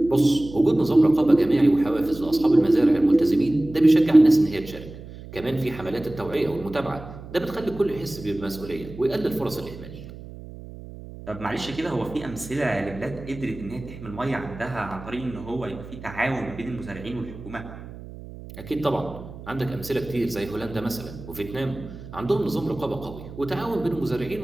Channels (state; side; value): noise; right; hum, 14 dB below the sound